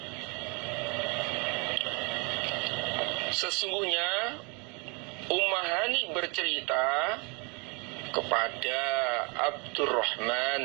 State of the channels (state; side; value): quieter; left; 31.8 dB